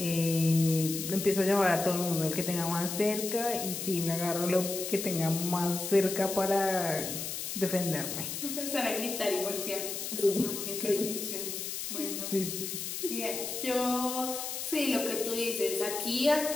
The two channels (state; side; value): noise; left; hiss, 5 dB below the sound